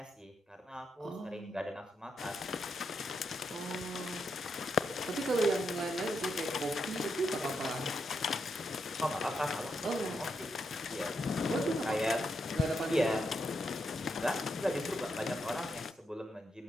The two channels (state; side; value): normal; both; correlation 0.82